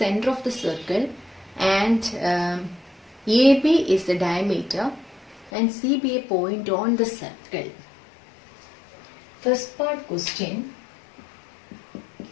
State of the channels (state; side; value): drops out; right; at 5.5 s